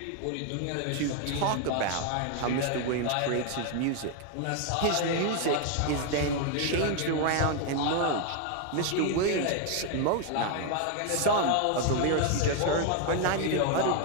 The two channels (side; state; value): both; different; correlation 0.01